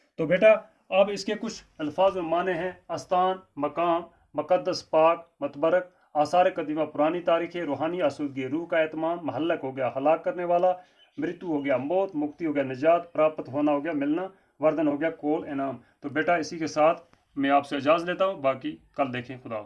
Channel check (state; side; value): identical; both; correlation 1.00